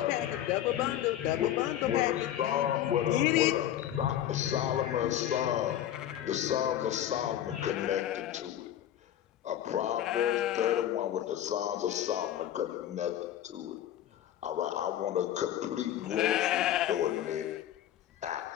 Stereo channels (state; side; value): quieter; right; 11.5 dB